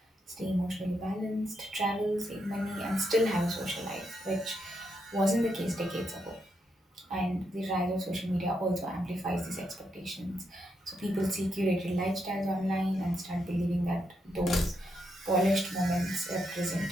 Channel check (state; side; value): normal; both; correlation 0.81